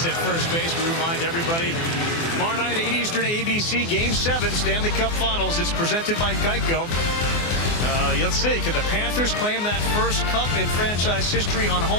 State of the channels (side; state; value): right; late; 24 ms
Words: at first base. We remind everybody, tomorrow night, 8 Eastern, ABC, Game 7, Stanley Cup Finals. It's presented by Geico. Let's see, can the Panthers claim that first cup in franchise history on